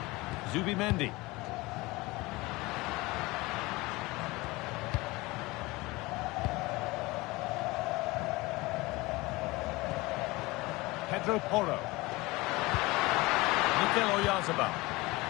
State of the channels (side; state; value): right; quieter; 22.0 dB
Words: Zubimendi. Pedro Porro. Mikel Oyarzabal.